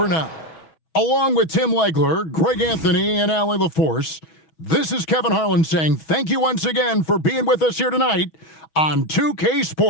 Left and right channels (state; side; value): late; right; 6.2 ms